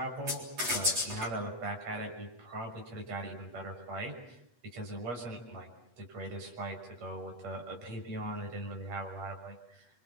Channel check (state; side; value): late; left; 8.2 ms